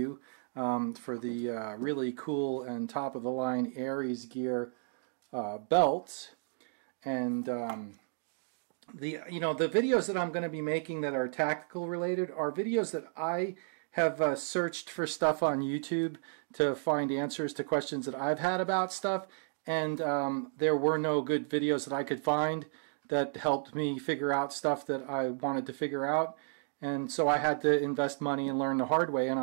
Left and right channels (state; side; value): silent; left; digital silence